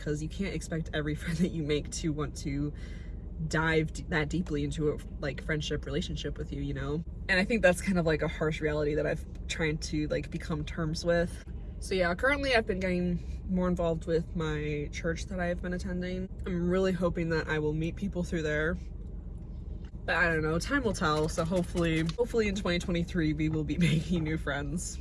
you can't expect every friend that you make to want to dive that deeply into a like friendship relationship with you, you know? And I think that's kind of like a harsh reality that I've tried to like become terms with. So yeah, currently I've been getting more involved with my church that I've been attending. I'm really hoping that I will meet people through there, but I don't know, time will tell. So hopefully in 2023 we will be making new friends.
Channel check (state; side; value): identical; both; correlation 1.00